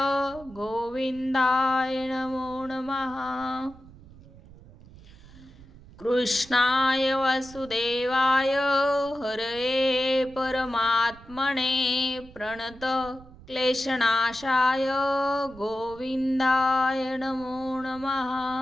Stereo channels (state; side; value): noise; right; rumble, 21 dB below the sound